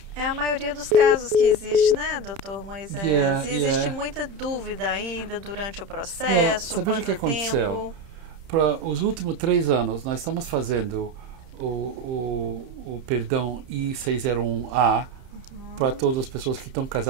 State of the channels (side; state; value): left; late; 30 ms